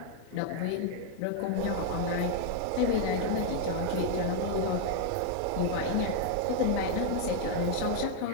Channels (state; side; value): different; both; correlation 0.00